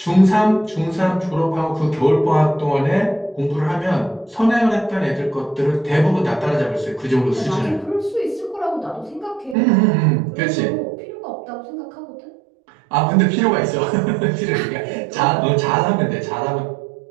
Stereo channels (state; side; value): drops out; left; at 9.6 s